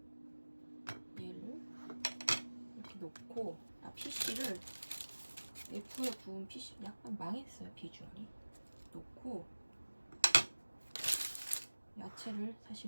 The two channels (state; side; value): inverted; both; correlation -1.00